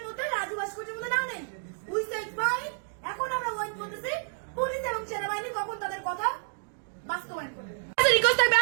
মধ্যে রাজু ভাস্কর্যের মধ্যে না নেই। উই সেড ফাইন, এখন আমরা ওয়েট করতেছি পুলিশ এবং সেনাবাহিনী কখন তাদের কথা বাস্তবায়ন করবে। রিকোয়েস্ট থাকবে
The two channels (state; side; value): silent; left; 58 dB below the other